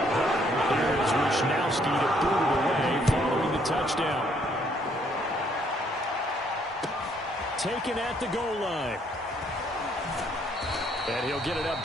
Here is Wishnowski to boot it away following the touchdown. Taken at the goal line. And he'll get it up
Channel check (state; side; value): normal; both; correlation 0.67